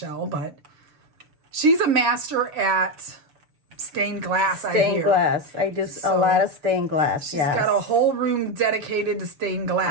but she's a master at stained glass, Stained glass. I do a lot of stained glass, She's got a whole room dedicated to stained glass.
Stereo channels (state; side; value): late; left; 6.9 ms